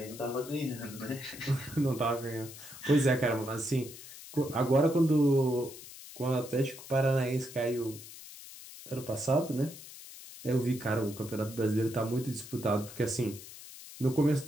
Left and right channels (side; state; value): left; noise; hiss, 15 dB below the sound